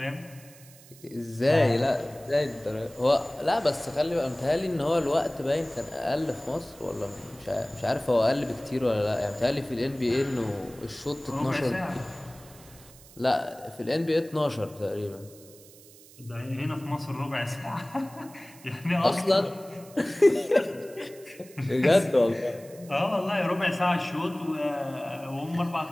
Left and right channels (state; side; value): noise; right; hiss, 22 dB below the sound